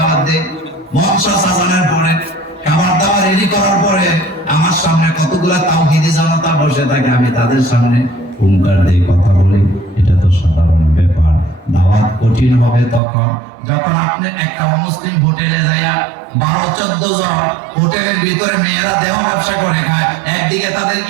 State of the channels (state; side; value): drops out; left; at 13.0 s